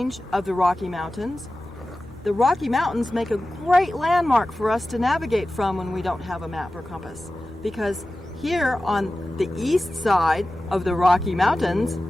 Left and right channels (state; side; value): normal; both; correlation 0.95